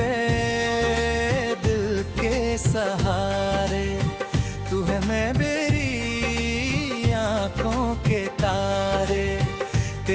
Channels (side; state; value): both; identical; correlation 1.00